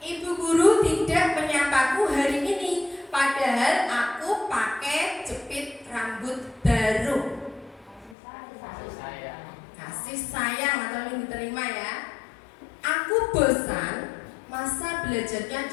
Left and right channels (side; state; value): right; drops out; at 8.2 s